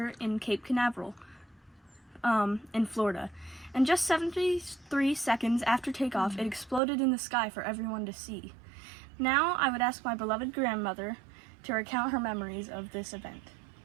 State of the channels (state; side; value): drops out; left; at 6.8 s